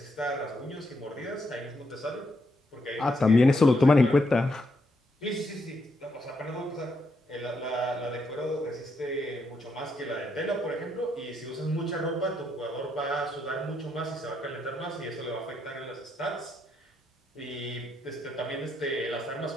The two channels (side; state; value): both; normal; correlation 0.78